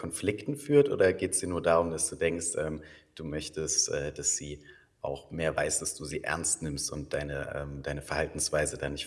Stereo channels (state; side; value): identical; both; correlation 1.00